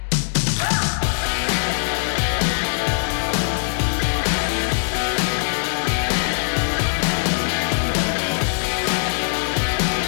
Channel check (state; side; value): silent; right; digital silence